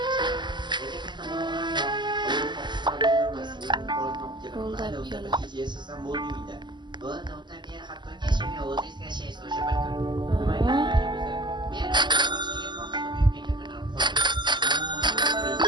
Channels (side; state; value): left; late; 0.21 ms